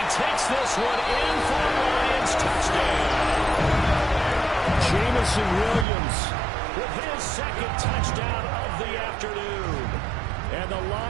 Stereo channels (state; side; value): drops out; left; at 5.9 s